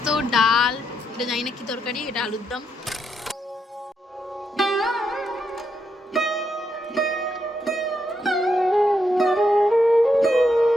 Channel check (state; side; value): normal; both; correlation 0.80